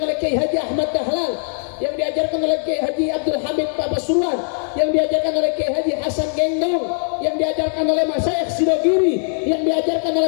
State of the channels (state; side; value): silent; right; 66 dB below the other